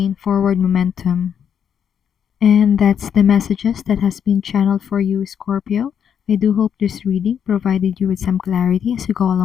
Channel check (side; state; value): right; quieter; 8.2 dB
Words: forward momentum. And that's the messages that has been channeled for you, Scorpio. I do hope this reading provided you with some clarity as you go